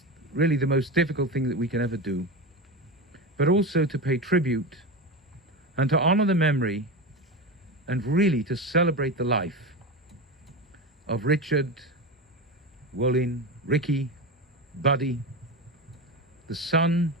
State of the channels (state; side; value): normal; both; correlation 0.21